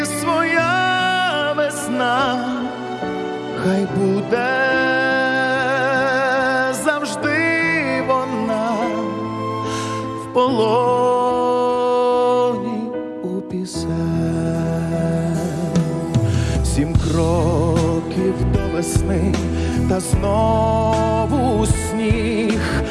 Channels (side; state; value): both; identical; correlation 1.00